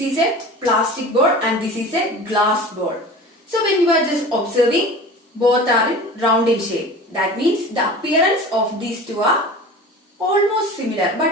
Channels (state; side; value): normal; both; correlation 0.37